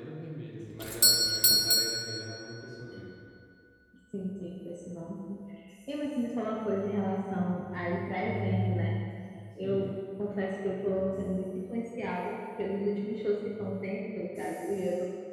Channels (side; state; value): both; identical; correlation 1.00